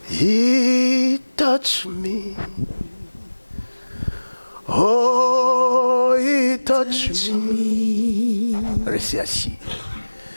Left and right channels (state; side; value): inverted; both; correlation -1.00